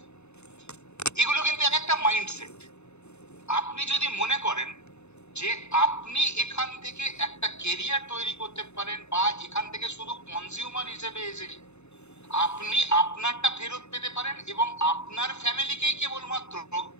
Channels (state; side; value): late; right; 0.81 ms